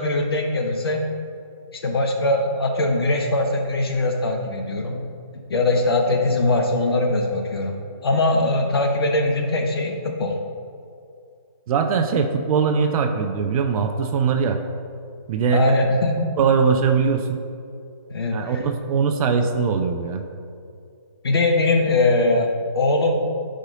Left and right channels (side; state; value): both; inverted; correlation -0.46